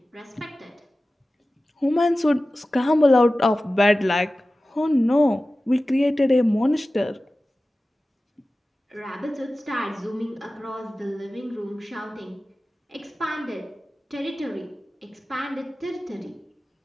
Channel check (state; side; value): normal; both; correlation 0.96